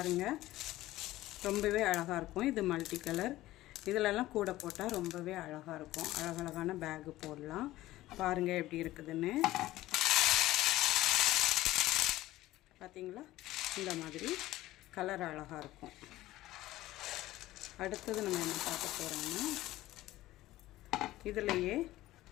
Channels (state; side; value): quieter; right; 16.2 dB